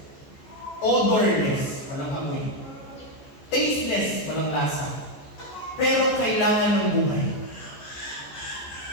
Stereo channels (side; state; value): right; late; 14 ms